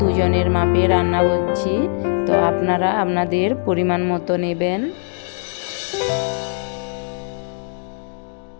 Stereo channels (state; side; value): silent; right; digital silence